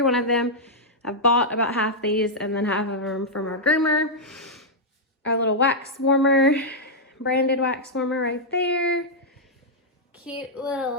one of them. I've bought about half these and then half of them from our groomer. Our little wax warmer, branded wax warmer right there. Cute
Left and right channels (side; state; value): both; normal; correlation -0.06